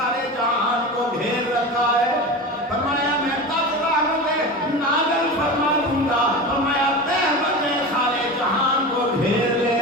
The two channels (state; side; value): normal; both; correlation 0.28